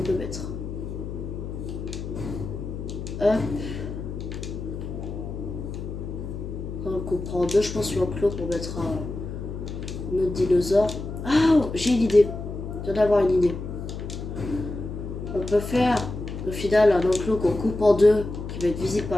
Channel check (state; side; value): noise; left; hum, 7 dB below the sound